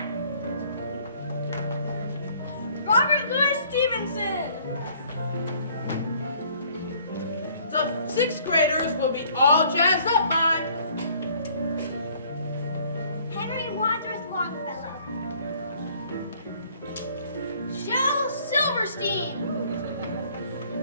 Robert Louis Stevenson. The 6th graders will be all jazzed up by Henry Wadsworth Longfellow, Shel Silverstein,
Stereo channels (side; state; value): both; inverted; correlation -0.59